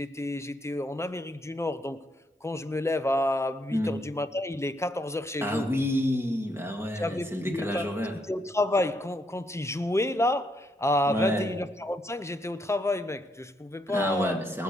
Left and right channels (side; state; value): both; normal; correlation 0.76